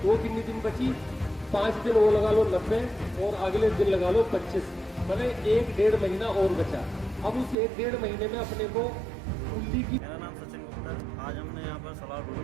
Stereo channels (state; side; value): drops out; left; at 7.6 s